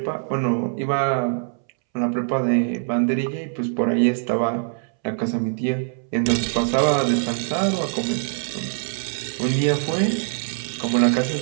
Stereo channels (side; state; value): left; silent; 63 dB below the other